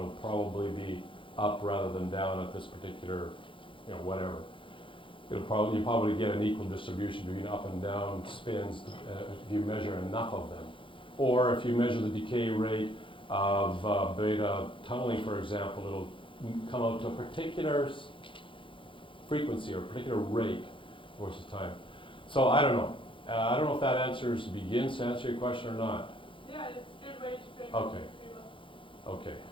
probably be up rather than down at this particular, whatever. You'll probably get an equal distribution between up and down spins if you measure enough of them. Or if you measure the decay rate of beta tunneling, for example, it'll come out to a particular frequency or a particular rate over time. So I don't know. I don't know if that begins to answer your question or not. Yeah, it's a good way to frame Okay. it. Okay.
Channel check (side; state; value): right; late; 0.25 ms